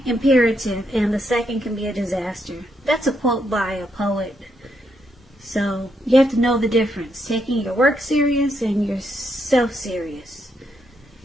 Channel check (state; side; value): normal; both; correlation 0.78